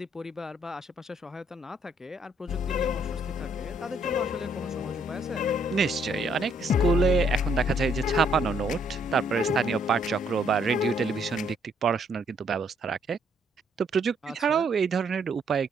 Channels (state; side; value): normal; both; correlation 0.68